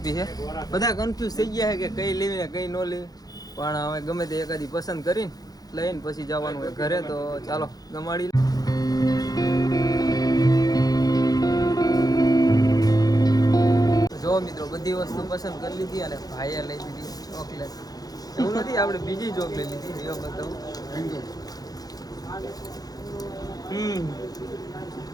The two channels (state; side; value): late; right; 0.18 ms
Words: છે. બધા કન્ફ્યુઝ થઈ ગયા છે કે કઈ લેવી ને કઈ ન લેવી, પણ હવે ગમે તે એકાદી પસંદ કરીને લઈને પછી જવાનું હોય ઘરે. તો ચાલો ગમાડી. જો મિત્રો બધી વસ્તુ પસંદ કરી લીધી અને ભાઈએ લઈ દીધી ચોકલેટ. એવું નથી, આપણે બીજી ચોકલેટ લીધી, એ બતાવું